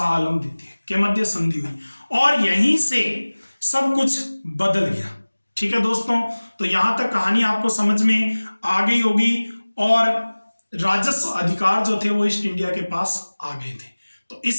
आलम द्वितीय के मध्य संधि हुई। और यहीं से सब कुछ बदल गया, ठीक है दोस्तों। तो यहां तक कहानी आपको समझ में आ गई होगी और राजस्व अधिकार जो थे वो ईस्ट इंडिया के पास आ गए थे। तो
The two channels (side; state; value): both; inverted; correlation -1.00